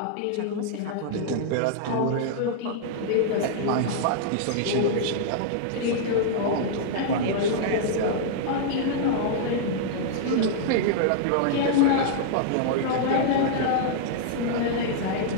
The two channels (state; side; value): different; both; correlation -0.01